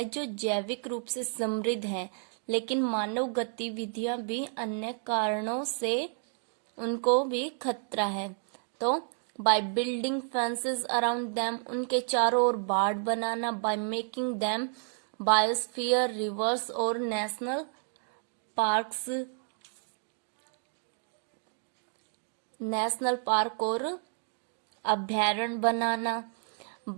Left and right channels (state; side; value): silent; left; 57 dB below the other